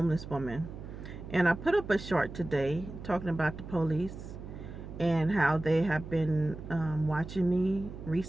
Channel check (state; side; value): noise; right; hum, 11 dB below the sound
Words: woman, and I put up a short today talking about the police and how they have been watching me